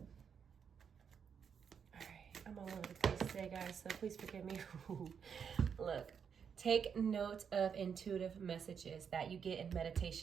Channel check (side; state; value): left; quieter; 7.0 dB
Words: Alright, I'm all over the place today, guys, so please forgive me. Look, take note of intuitive messages that you get in